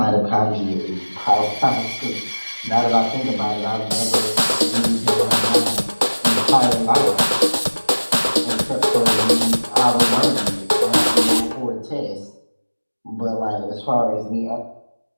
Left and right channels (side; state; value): both; inverted; correlation -1.00